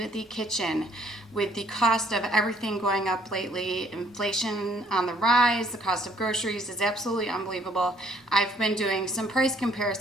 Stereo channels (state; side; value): normal; both; correlation 0.63